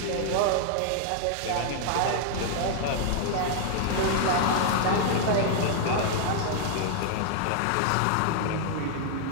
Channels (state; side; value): different; both; correlation 0.00